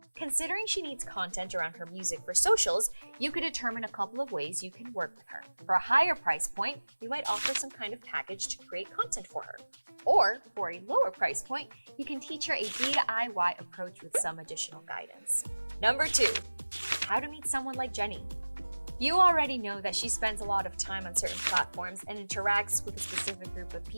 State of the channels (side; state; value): both; inverted; correlation -1.00